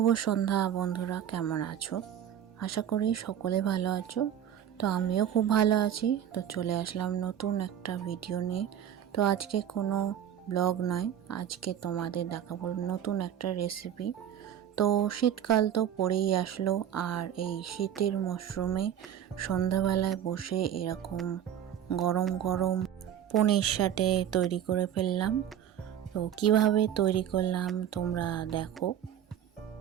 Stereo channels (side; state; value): left; quieter; 10.0 dB